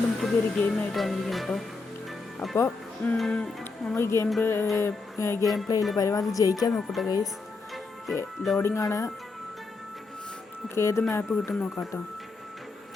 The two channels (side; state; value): right; quieter; 3.9 dB